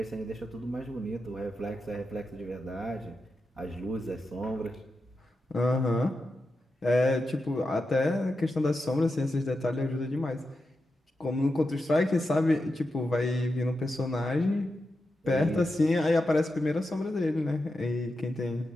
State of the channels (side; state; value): both; normal; correlation 0.89